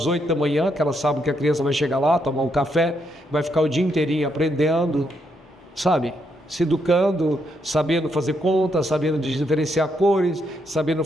8 da manhã, que ela sabe que a criança vai chegar lá, tomar um café, vai ficar o dia inteirinho aprendendo, sabe? Se educando, sabendo fazer contas, sabendo diferenciar cores, sabendo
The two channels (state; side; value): normal; both; correlation 0.77